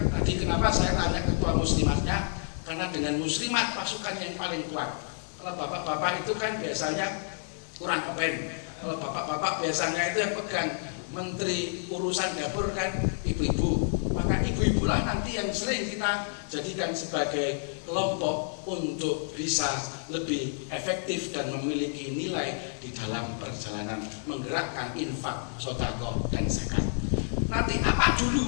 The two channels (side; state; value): right; silent; digital silence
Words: tadi kenapa saya tanya ketua muslimatnya, karena dengan muslimat pasukan yang paling kuat. Kalau bapak-bapak itu kan biasanya kurang kepen. Kalau bapak-bapak biasanya itu yang pegang menteri urusan dapur kan ibu-ibu. Maka ibu-ibulah nanti yang sering kita jadikan sebagai kelompok untuk bisa lebih efektif dan memiliki nilai di dalam perjalanan menggerakkan infak, sedekah dan zakat. Nanti apa